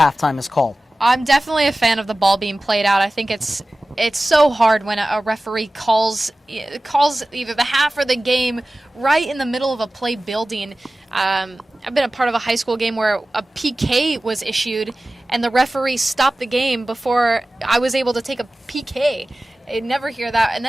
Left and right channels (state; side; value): normal; both; correlation 0.96